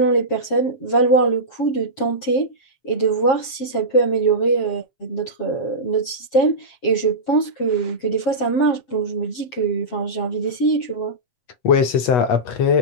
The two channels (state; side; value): late; right; 7.4 ms